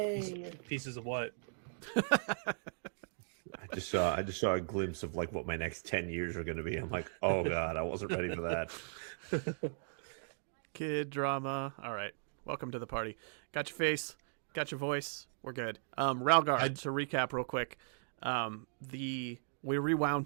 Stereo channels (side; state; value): left; silent; digital silence